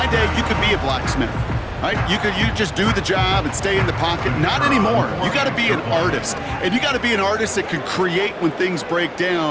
day, you could be a blacksmith, right? You just do the job and stay in the pocket. Not anymore. You got to be an artist. And you got to be an artist that can create when things break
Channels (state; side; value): identical; both; correlation 1.00